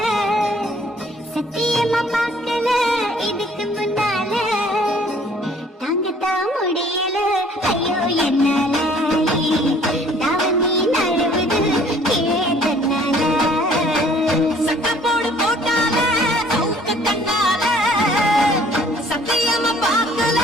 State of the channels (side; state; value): both; normal; correlation 0.56